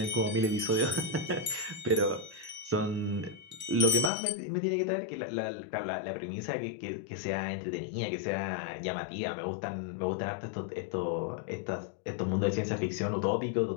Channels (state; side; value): drops out; right; at 4.1 s